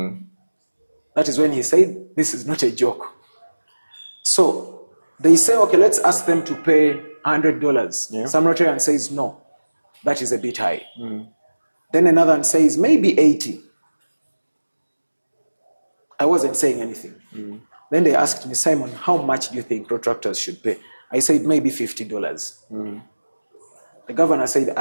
That is when he said, this is not a joke. So they say, okay, let's ask them to pay $100. Yeah. Some Rotarian says, no, that is a bit high. Then another one says, maybe 80. I wasn't saying anything. Then they asked me, Simon, how much do you think Rotaractors should pay? I said, maybe $50. The governor said,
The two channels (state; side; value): inverted; both; correlation -1.00